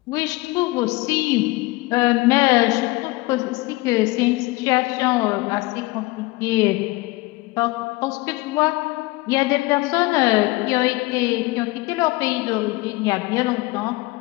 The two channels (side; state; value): right; quieter; 22.0 dB